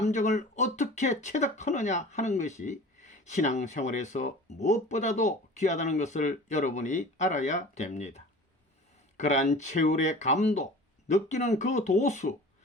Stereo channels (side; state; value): both; normal; correlation 0.41